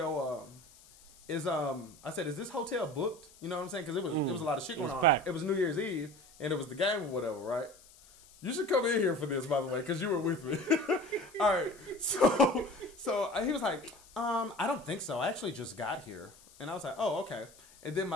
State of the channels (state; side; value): noise; left; hiss, 24 dB below the sound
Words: I said, is this hotel booked? You know what I'm saying? Because it was a lot of shit going on. Packed. It was New Year's Eve and it was the game or whatever, right? You should come in here for this, by the way, because you were with me. All right. So he was like, I don't think so. I actually just got here. And I was like, oh, okay. And then